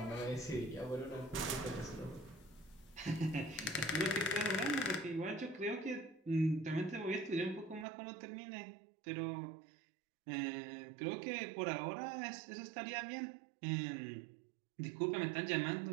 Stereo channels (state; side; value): drops out; left; at 7.9 s